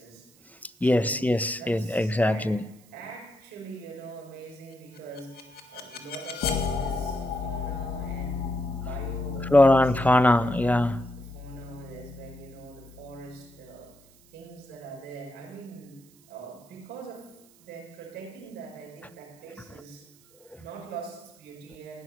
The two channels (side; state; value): right; noise; hiss, 28 dB below the sound